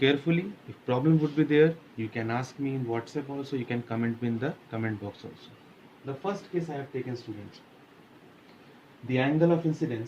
If problem would be there, you can ask me in WhatsApp also, you can comment me in the comment box also. The first case I have taken, students. The angle of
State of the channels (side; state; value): both; identical; correlation 1.00